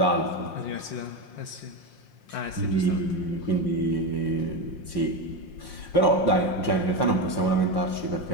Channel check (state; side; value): late; right; 5.7 ms